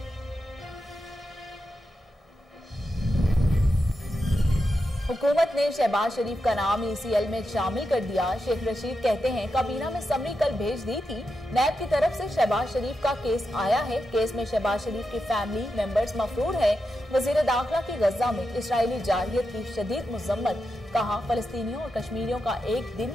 हुकूमत ने शहबाज शरीफ का नाम ईसीएल में शामिल कर दिया। शेख रशीद कहते हैं, काबीना में समरी कल भेज दी थी। नैब की तरफ से शहबाज शरीफ का केस आया है। केस में शहबाज शरीफ की फैमिली मेंबर्स मफरूर है। वजीर दाखिला की गजा में इसराइली जारहियत की शदीद मुजम्मत। कहा, फलस्तीनियों और कश्मीरियों का एक दिन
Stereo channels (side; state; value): both; normal; correlation 0.87